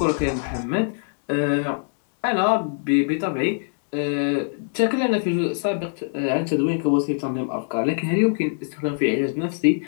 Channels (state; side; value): silent; right; digital silence